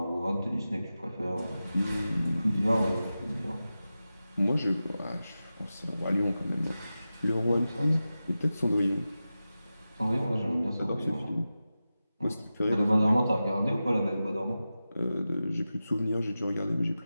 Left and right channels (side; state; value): both; inverted; correlation -0.93